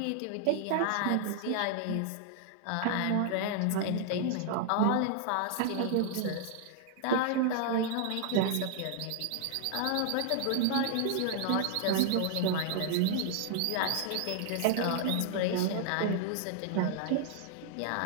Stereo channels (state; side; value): different; both; correlation 0.00